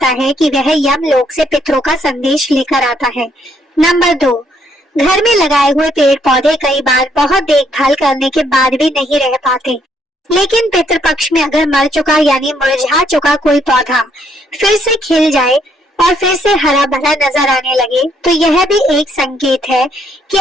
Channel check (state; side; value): normal; both; correlation 0.70